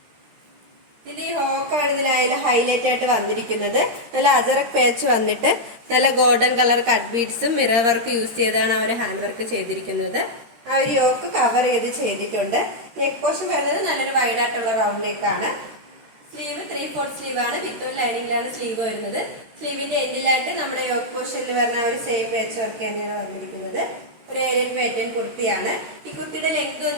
ഇതിന്റെ ഈ ഹോക്കാണ് ഇതിലായാലും ഹൈലൈറ്റ് ആയിട്ട് വന്നിരിക്കുന്നത്. നല്ല അജറക് പേച്ച് വന്നിട്ട് നല്ല ഗോൾഡൻ കളർ കട്ട് ബീഡ്സും മിറർ വർക്ക് യൂസ് ചെയ്താണ് ആ ഒരു ഹാൻഡ് വർക്ക് ചെയ്തിരിക്കുന്നത്. ആ ഒരു യോക്ക് കവർ ചെയ്തിട്ടുണ്ട്. നെക്ക് പോർഷൻ വരുന്നത് നല്ലൊരു വൈഡ് ആയിട്ടുള്ള റൗണ്ട് നെക്കാണ്. സ്ലീവ് 3/4 സ്ലീവ് ആണ്. വിത്ത് ലൈനിങ്ങിലാണ് സ്ലീവ് വരുന്നത്. സ്ലീവിന്റെ എൻഡിലായിട്ട് നമ്മുടെ യോക്ക് പോർഷനിൽ വരുന്ന ഒരു സെയിം പേച്ച് വർക്ക് തന്നെയാണ് വന്നിരിക്കുന്നത്. ഒരു ഏരിയൻ പാറ്റേൺ കുർത്തിയാണ്. ഈ കുർത്തിയുടെ ലെങ്ത്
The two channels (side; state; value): left; late; 13 ms